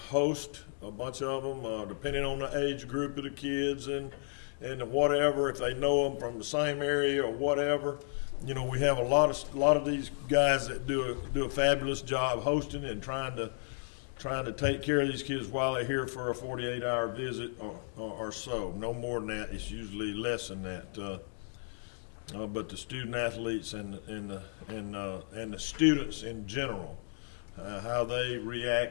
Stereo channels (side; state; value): right; silent; digital silence